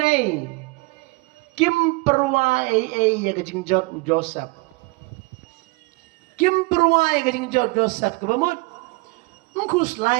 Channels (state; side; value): quieter; left; 26.2 dB